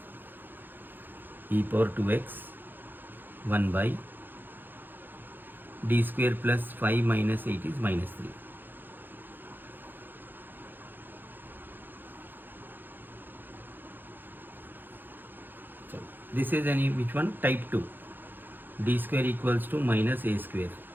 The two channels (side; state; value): left; late; 0.093 ms